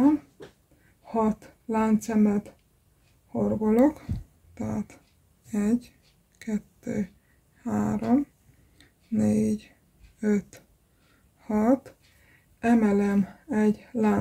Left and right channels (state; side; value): identical; both; correlation 1.00